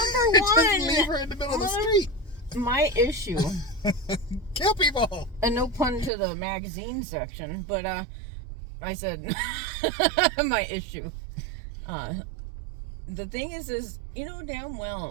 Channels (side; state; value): left; drops out; at 6.1 s